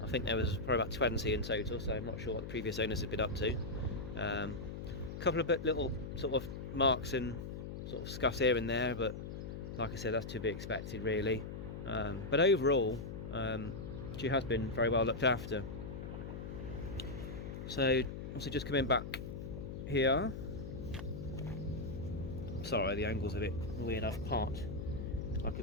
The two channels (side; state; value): left; noise; hum, 7 dB below the sound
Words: I think there was probably about 20 in total, so I'm not sure what the previous owners had been up to. A couple of little sort of marks and sort of scuffs here and there, but like I said, that's to be expected really. But overall, she has been very well looked after. So also just coming back here. Sorry, the angle's a bit weird. I've parked like